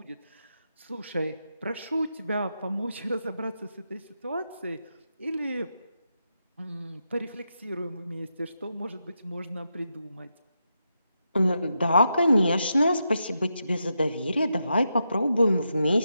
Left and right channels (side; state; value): both; inverted; correlation -0.85